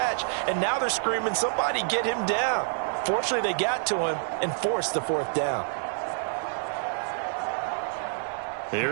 And now they're screaming, somebody get him down. Fortunately, they got to him and forced the 4th down.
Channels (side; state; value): left; silent; 60 dB below the other